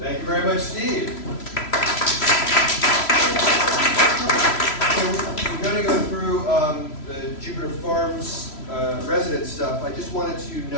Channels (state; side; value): late; right; 3.0 ms